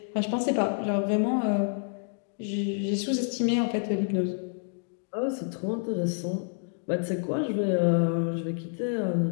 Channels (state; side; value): silent; right; 57 dB below the other